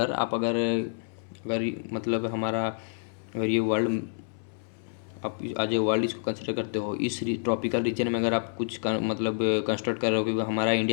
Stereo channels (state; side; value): silent; right; 59 dB below the other